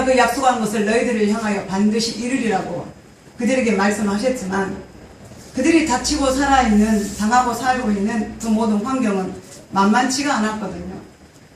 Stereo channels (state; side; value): identical; both; correlation 1.00